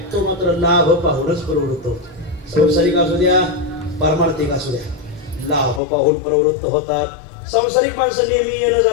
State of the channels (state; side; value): drops out; right; at 5.8 s